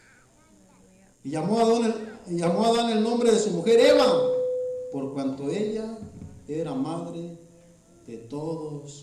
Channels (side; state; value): both; identical; correlation 1.00